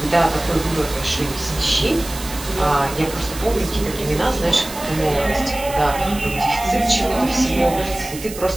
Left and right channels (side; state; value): right; noise; hiss, 12 dB below the sound